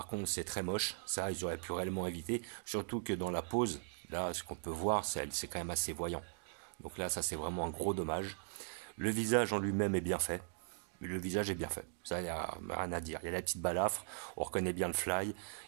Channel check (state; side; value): silent; left; digital silence